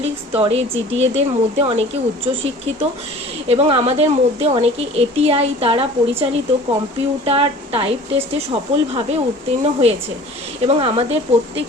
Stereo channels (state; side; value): normal; both; correlation 0.45